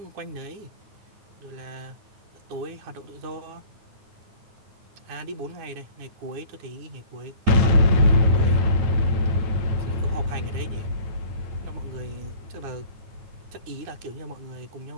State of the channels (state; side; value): late; left; 9.4 ms